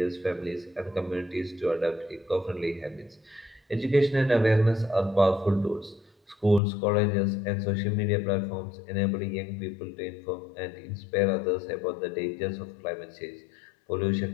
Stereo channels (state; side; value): drops out; right; at 6.6 s